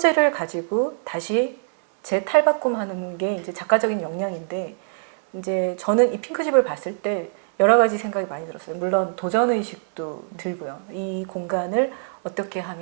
가지고 다시 재탈바꿈하는 게 이제 작가적인 역량인데 이제 저는 이 핑크집을 봤을 때 여러 가지 생각이 많이 들었어요. 물론 도전 의식도 들고요. 이 공간을 어떻게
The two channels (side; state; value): left; silent; 62 dB below the other